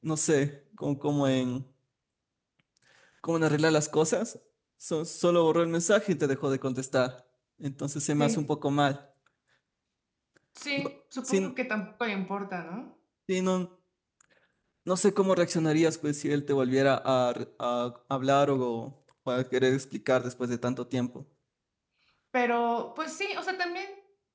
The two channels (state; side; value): identical; both; correlation 1.00